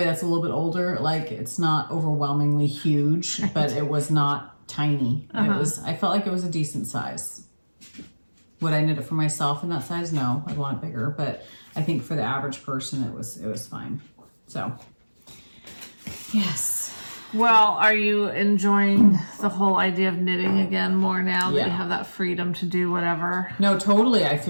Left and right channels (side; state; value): both; inverted; correlation -1.00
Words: that's a little bit older. Like it's not overwhelmingly huge, but it was not tiny. I felt like it was a decent size. Would I knit it for myself in that size? No, I'd want it bigger, but I think for the average person it was fine. So yes. Well, are you enjoying the whole idea of knitting again more now that you have that freedom to do whatever? No, totally. I